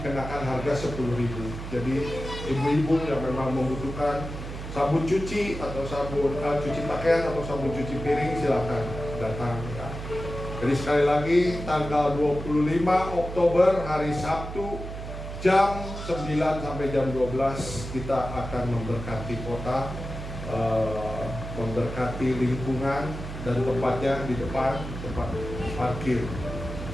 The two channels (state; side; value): noise; right; hum, 8 dB below the sound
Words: harga 10.000. Jadi ibu-ibu yang memang membutuhkan sabun cuci atau sabun cuci pakaian atau sabun cuci piring, silakan datang, ya. Jadi sekali lagi tanggal 25 Oktober hari Sabtu jam 9 sampai jam 12 kita akan memberkati kota, memberkati lingkungan, dan tempatnya di depan, tempat parkir